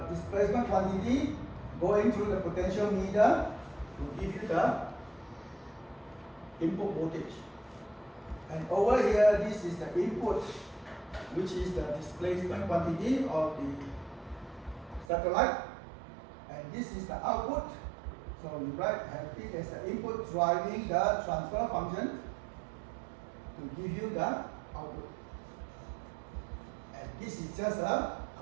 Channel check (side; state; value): left; drops out; at 15.1 s